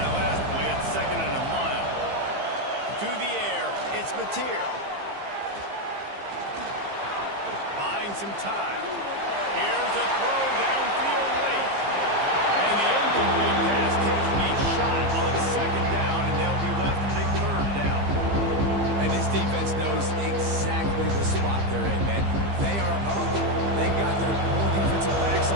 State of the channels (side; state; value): left; late; 15 ms